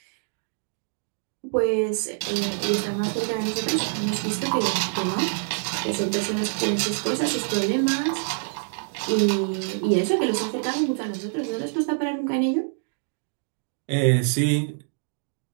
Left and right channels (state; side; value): silent; left; digital silence